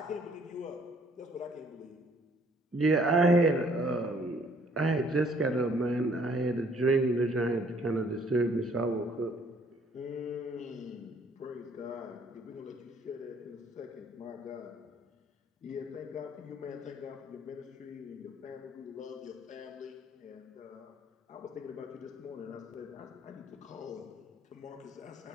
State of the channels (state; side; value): normal; both; correlation 0.62